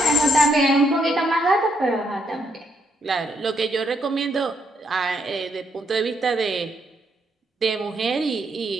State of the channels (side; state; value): both; normal; correlation 0.75